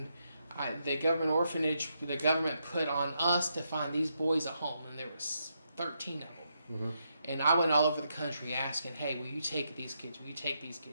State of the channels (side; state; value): both; inverted; correlation -0.81